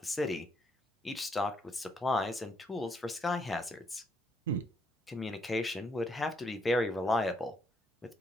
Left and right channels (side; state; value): both; normal; correlation 0.74